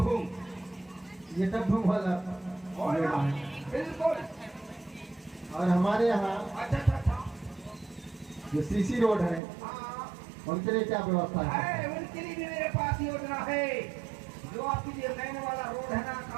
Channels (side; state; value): left; drops out; at 9.4 s